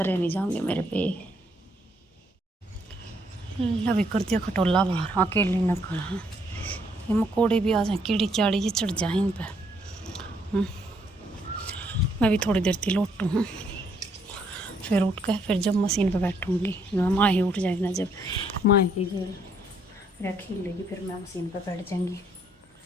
नहीं जाऊँगी मेरे पे। अभी कर दिया खटोला बाहर, अकेले न खड़ा। ये मकोड़े भी आ जाए, कीड़ी चाड़ी ये चढ़ जाए इन पर। मैं भी थोड़ी देर थी लौटूँ हूँ, फिर उठ कर फिर जब मशीन पे बैठूँगी, माँ ही उठ जाएगी ना, जब माँ की जो खील लेगी फिर मैं मशीन पे बैठ जाएंगी।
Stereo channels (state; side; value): normal; both; correlation 0.70